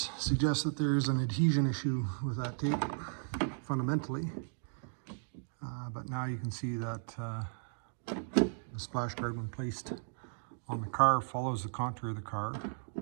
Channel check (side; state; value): left; silent; digital silence